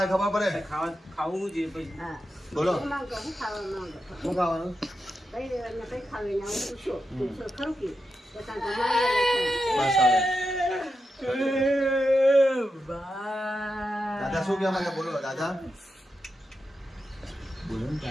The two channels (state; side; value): normal; both; correlation 0.88